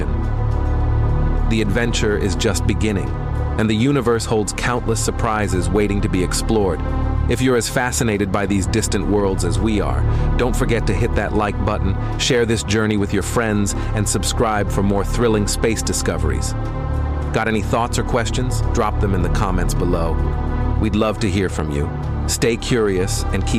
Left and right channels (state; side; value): identical; both; correlation 1.00